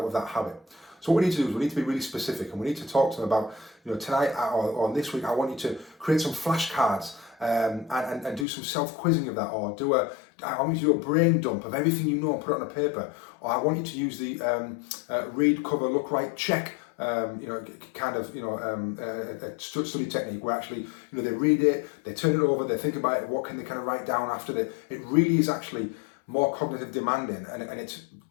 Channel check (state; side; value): drops out; right; at 8.5 s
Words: of that habit. So what we need to do is we need to be really specific, and we need to talk to them about, tonight or this week, I want you to create some flashcards and do some self-quizzing of that, or I want you to do a brain dump of everything you know and put it on a paper, or I want you to use the read, cover, look, write, check a study technique where actually, they read it, they turn it over, they think about it, what can they kind of write down after that. It really is actually more cognitive demanding, and it's